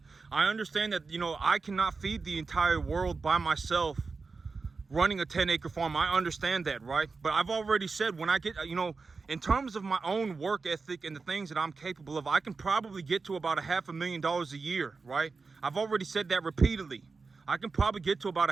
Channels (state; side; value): quieter; left; 4.4 dB